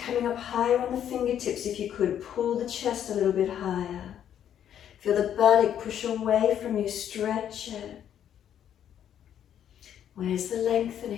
coming up higher on the fingertips if you could. Pull the chest a little bit higher. Feel the buttock push away from you, stretch it. Where's the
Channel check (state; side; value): quieter; right; 9.8 dB